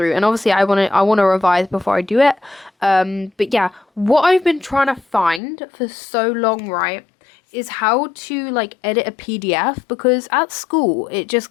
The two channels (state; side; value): drops out; right; at 5.4 s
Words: and obviously I want to revise before I do it. But yeah, what I've been trying to find for so long, right, is how to like edit a PDF, because at school it just